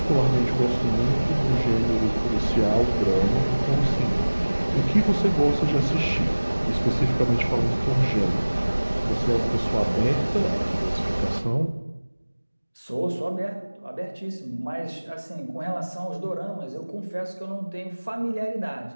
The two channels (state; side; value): inverted; both; correlation -1.00